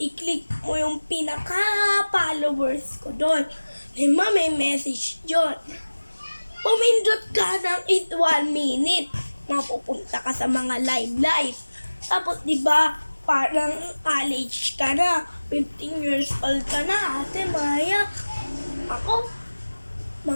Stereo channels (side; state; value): both; inverted; correlation -1.00